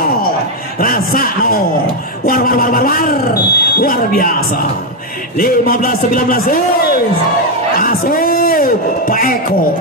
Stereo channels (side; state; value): both; normal; correlation 0.04